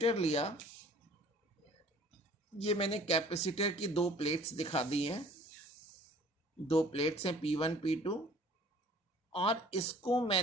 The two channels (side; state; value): both; normal; correlation 0.51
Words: लिया। ये मैंने कैपेसिटर की दो प्लेट्स दिखा दी हैं, दो प्लेट्स हैं P1 P2, और इसको